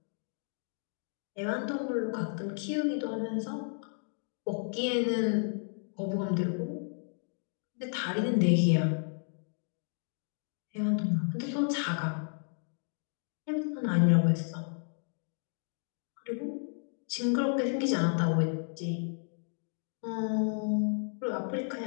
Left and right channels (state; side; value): silent; right; 56 dB below the other